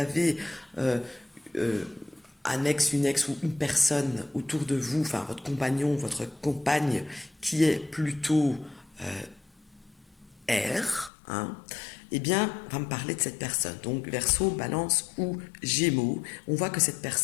euh, un ex, une ex ou une personne autour de vous, enfin votre compagnon, votre compagne, qui est plutôt air, hein, eh bien, on va me parler de cette personne. Donc, Verseau, Balance ou Gémeaux, on voit que cette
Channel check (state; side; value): drops out; right; at 11.1 s